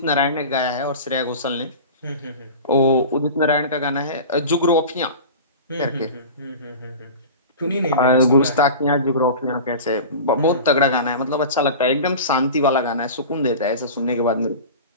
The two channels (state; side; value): inverted; both; correlation -0.34